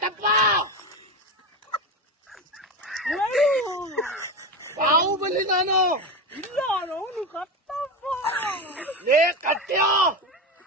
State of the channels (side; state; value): both; normal; correlation 0.19